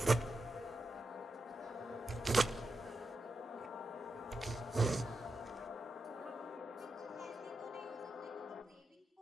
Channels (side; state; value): both; normal; correlation 0.87